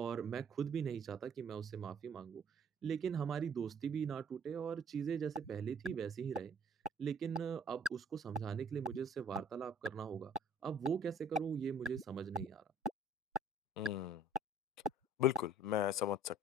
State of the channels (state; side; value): normal; both; correlation 0.56